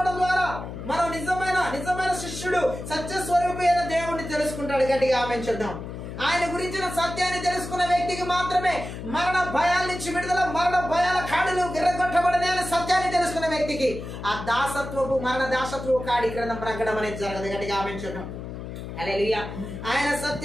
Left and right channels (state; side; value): noise; left; hum, 9 dB below the sound